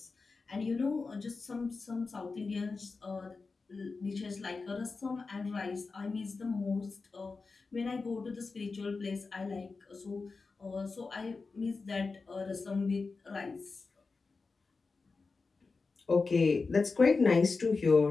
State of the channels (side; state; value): right; quieter; 4.2 dB